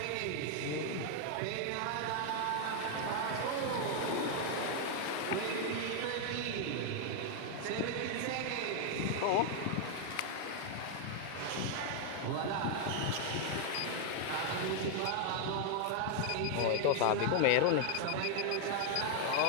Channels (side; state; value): both; different; correlation 0.00